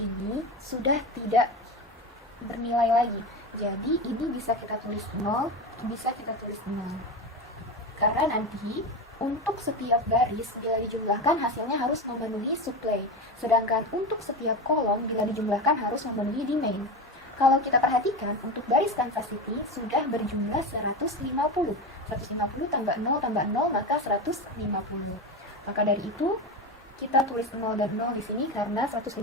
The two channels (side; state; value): both; normal; correlation 0.21